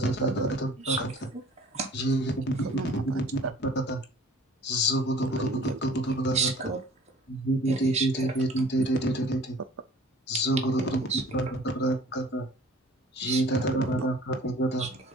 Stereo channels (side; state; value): both; normal; correlation 0.49